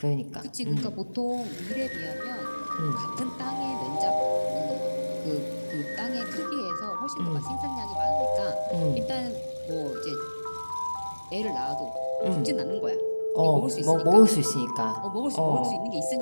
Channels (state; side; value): inverted; both; correlation -1.00